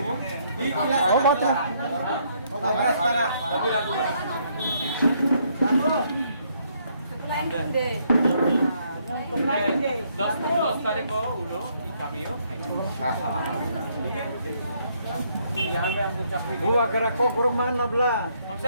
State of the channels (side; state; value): both; inverted; correlation -0.70